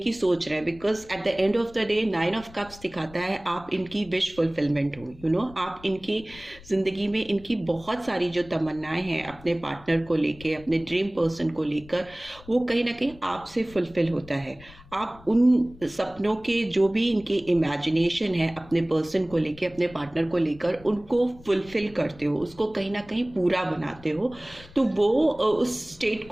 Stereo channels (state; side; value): noise; left; rumble, 21 dB below the sound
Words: सोच रहे हैं, because at the end of the day 9 of cups दिखाता है आप इनकी विश फुलफिलमेंट हो, आप इनकी जिंदगी में इनकी बहुत सारी जो तमन्नाएं हैं अपने पार्टनर को लेके, अपने ड्रीम पर्सन को लेकर, वो कहीं ना कहीं आपसे फुलफिल होता है। आप उन सपनों के जो भी इनकी इमेजिनेशन है अपने पर्सन को लेके, अपने पार्टनर को लेकर, उनको फुलफिल करते हो, उसको कहीं ना कहीं पूरा बनाते हो। तो वो उस स्टेट